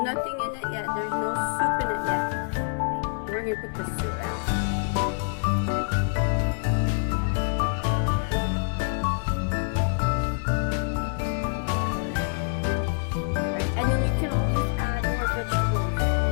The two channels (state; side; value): silent; right; 61 dB below the other